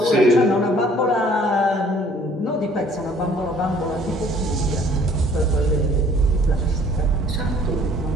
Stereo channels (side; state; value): both; normal; correlation 0.57